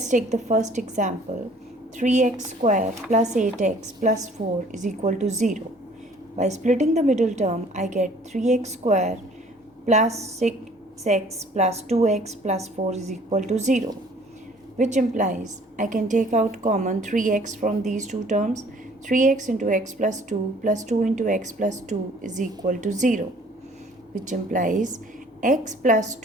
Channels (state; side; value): normal; both; correlation 0.55